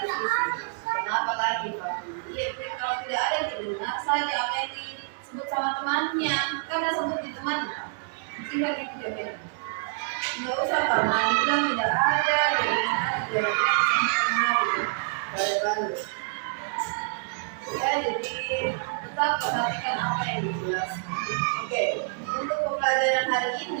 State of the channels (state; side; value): silent; left; digital silence